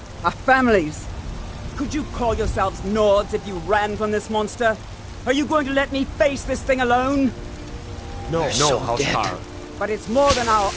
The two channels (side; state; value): both; identical; correlation 1.00